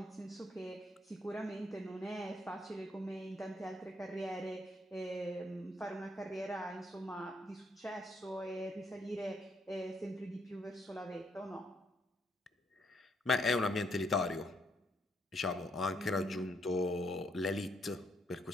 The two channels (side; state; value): both; normal; correlation 0.73